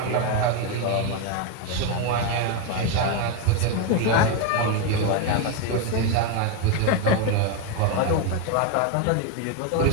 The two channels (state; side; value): different; both; correlation 0.02